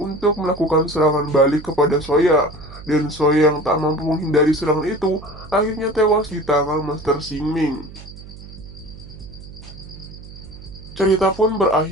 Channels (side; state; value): right; noise; hum, 16 dB below the sound